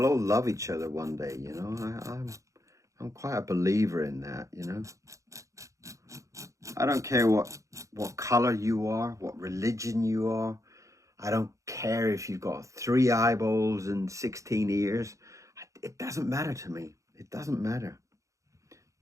all love each other one day, you know. I'm quite a believer in that, you know. I don't care what color you are, what religion you are. I don't care if you've got 3 eyeballs and 16 ears. It doesn't matter to me. It doesn't matter.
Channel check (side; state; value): left; late; 0.15 ms